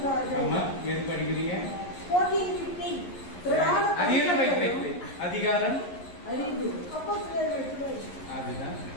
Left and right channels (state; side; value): late; right; 11 ms